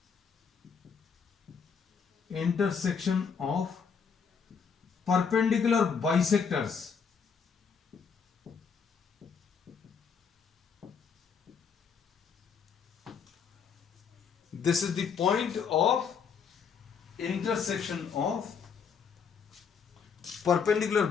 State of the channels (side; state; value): right; quieter; 6.3 dB